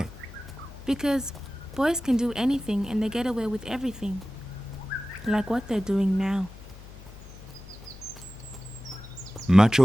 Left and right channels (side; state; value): left; noise; hum, 17 dB below the sound